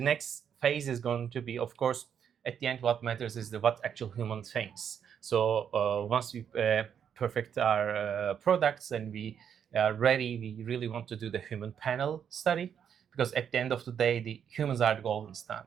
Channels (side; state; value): left; quieter; 8.2 dB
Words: next phase is going to be, of course, at the end, what matters is what actual human thinks. So once we perfect our products and we are ready, we really want to do the human panel study, because at the end of the day, the humans are the golden